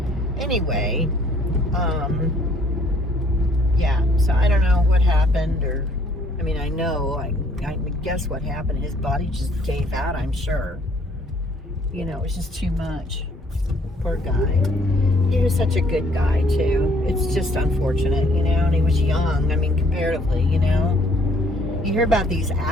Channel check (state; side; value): normal; both; correlation 0.62